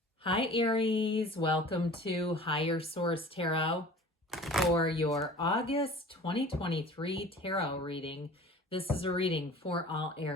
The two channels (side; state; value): both; normal; correlation 0.44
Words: Hi Aries, welcome to Higher Source Tarot for your August 2023 tarot reading. This is a reading for all